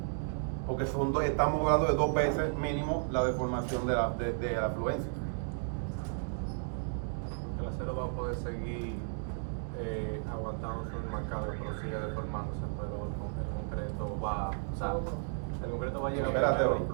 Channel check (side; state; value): left; silent; digital silence